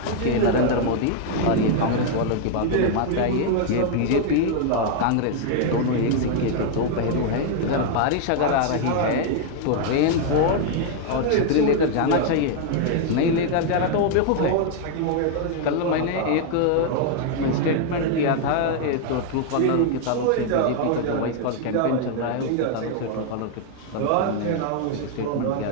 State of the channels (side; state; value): both; different; correlation 0.00